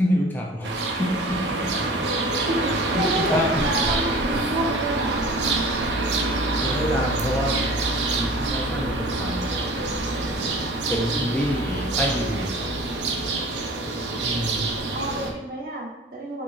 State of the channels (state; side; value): normal; both; correlation 0.42